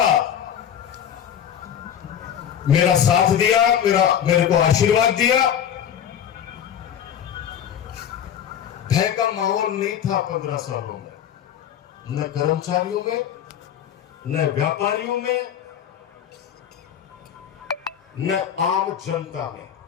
मेरा साथ दिया, मेरे को आशीर्वाद दिया। भय का माहौल नहीं था 15 सालों में, न कर्मचारियों में, न व्यापारियों में, न आम जनता में।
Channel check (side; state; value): right; quieter; 9.4 dB